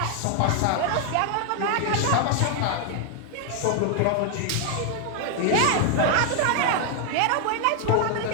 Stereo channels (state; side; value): different; both; correlation 0.00